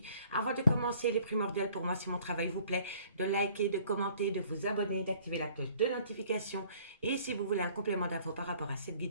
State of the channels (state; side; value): inverted; both; correlation -0.56